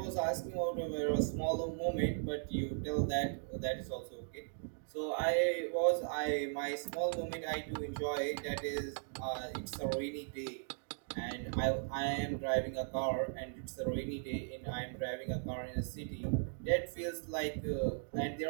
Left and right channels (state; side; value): silent; left; digital silence